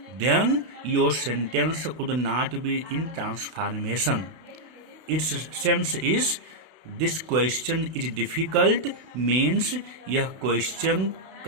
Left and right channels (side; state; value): left; late; 32 ms